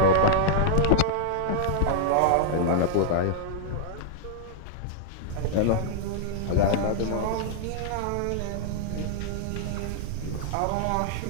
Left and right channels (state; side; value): different; both; correlation -0.01